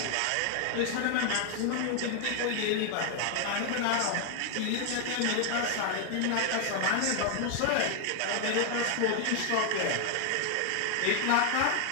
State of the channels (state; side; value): different; both; correlation 0.00